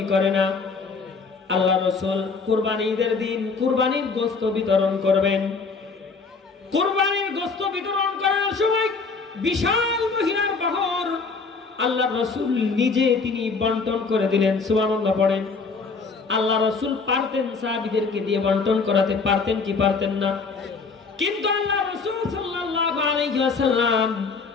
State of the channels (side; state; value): right; quieter; 4.6 dB